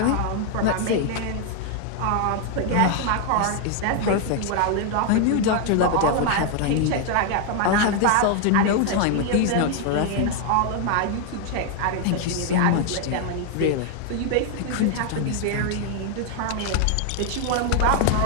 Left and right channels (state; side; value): different; both; correlation 0.00